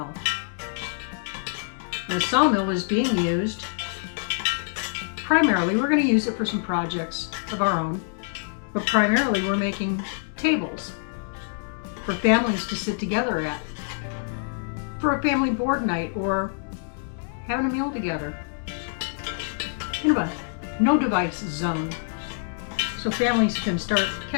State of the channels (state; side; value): silent; right; digital silence